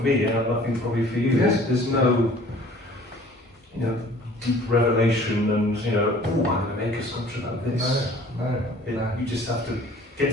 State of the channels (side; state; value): both; normal; correlation 0.51